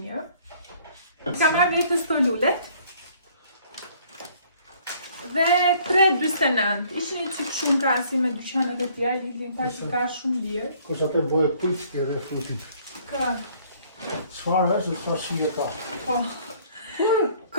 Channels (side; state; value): both; inverted; correlation -0.59